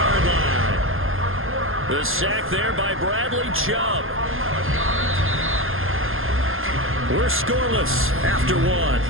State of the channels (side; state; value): left; late; 0.60 ms